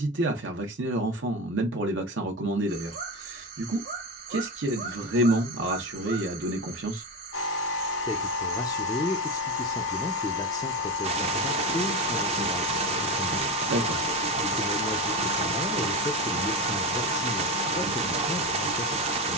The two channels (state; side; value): normal; both; correlation 0.19